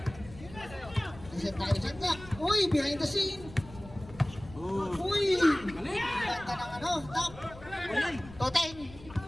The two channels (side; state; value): left; noise; rumble, 17 dB below the sound